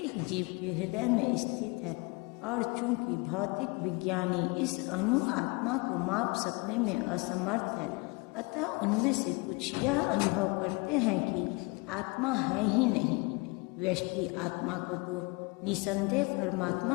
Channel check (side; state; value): right; quieter; 28.0 dB